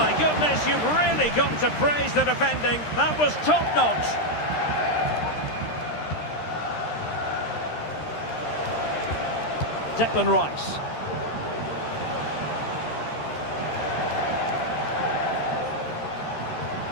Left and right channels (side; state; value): right; late; 13 ms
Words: goodness, you've really got to praise the defending. That was top-notch. Declan Rice.